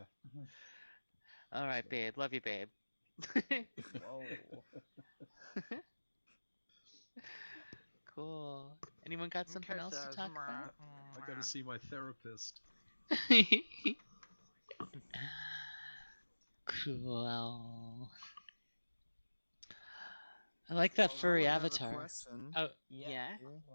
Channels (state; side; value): inverted; both; correlation -1.00